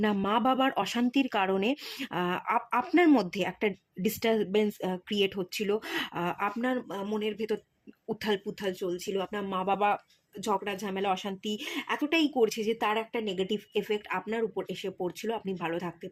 মা বাবার অশান্তির কারণে আপনার মধ্যে একটা ডিস্টারবেন্স ক্রিয়েট হচ্ছিল, আপনার মনের ভেতর উথাল পুথাল চলছিল, আপনার মা বাবা ঝগড়া ঝামেলা অশান্তি এতটাই করছে যে তার একটা নেগেটিভ এফেক্ট আপনার উপর এসে পড়ছিল, আপনি ভালো থাকতে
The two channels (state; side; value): identical; both; correlation 1.00